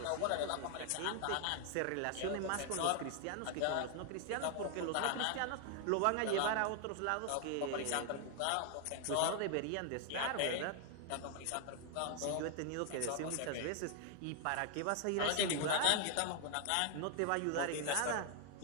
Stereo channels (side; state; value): both; different; correlation 0.00